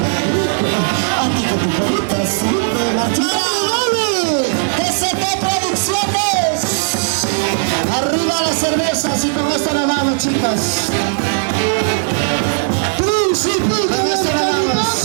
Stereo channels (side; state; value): left; silent; digital silence